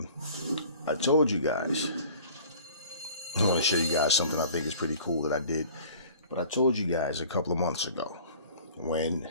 I told you guys, I want to show you guys something I think is pretty cool that I did, but I told you guys a couple of months ago when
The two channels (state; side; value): inverted; both; correlation -0.47